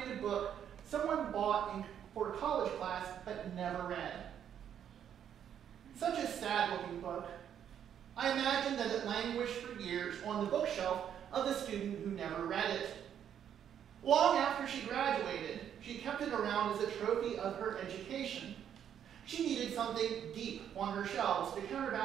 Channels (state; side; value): quieter; left; 9.2 dB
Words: of book someone bought for a college class but never read. Such a sad-looking book. I imagine that it languished for years on the bookshelf of the student who never read it. Long after she graduated, she kept it around as a trophy of her education. She needed something deep on her shelves to